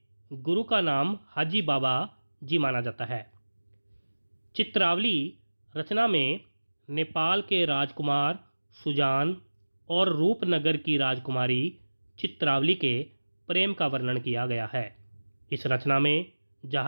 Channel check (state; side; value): inverted; both; correlation -1.00